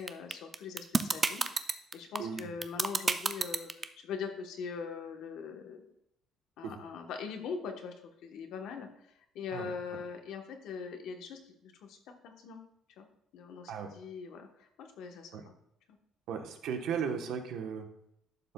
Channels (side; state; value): both; normal; correlation 0.70